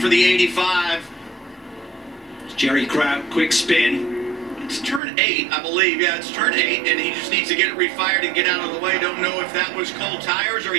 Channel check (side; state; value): left; drops out; at 5.0 s